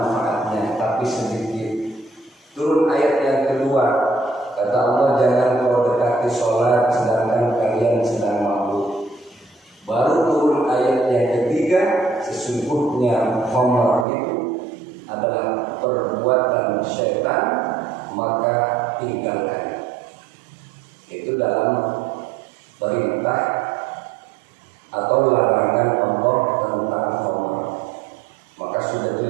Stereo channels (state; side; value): drops out; left; at 14.1 s